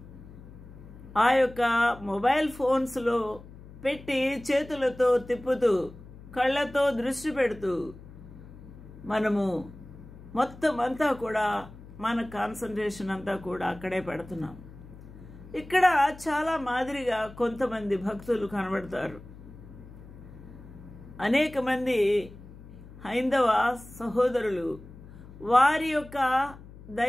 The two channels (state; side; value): noise; left; hum, 17 dB below the sound